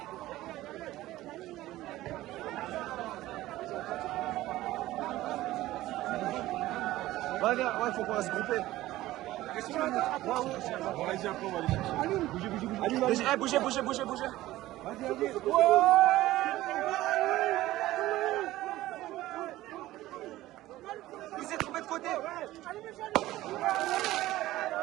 Ouais, viens, ouais, faut qu'on va se grouper. Bougez. Il s'est trompé de côté.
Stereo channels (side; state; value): left; quieter; 16.2 dB